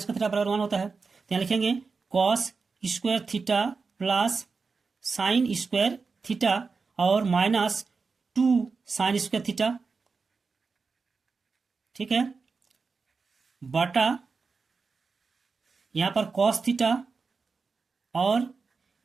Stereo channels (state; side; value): quieter; left; 4.7 dB